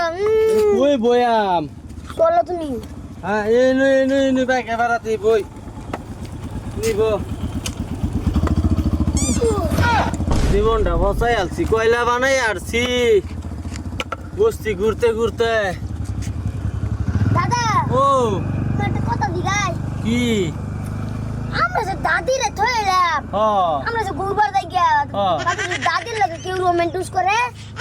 কই বয়াম চলো তুমি হ্যাঁ এই বাইক এবারাতে বই নিব জীবনটা বসাই আলছি কয়লা বানাই আরছি বস্তি ঘুরতে ঘুরতে দাদা ও একটা কথা দিগাই কি আমরা যে দাদিরে থইলাম আমরা যে গুরবার যাই গিয়া দাদির লাগে কেউ রোমান্টিস করে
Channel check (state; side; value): identical; both; correlation 1.00